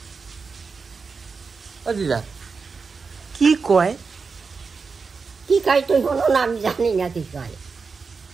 ও দিদা কি কয়? কি কয় তুই হলো না, আমি জানি না কি কয়।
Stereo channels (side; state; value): left; quieter; 4.9 dB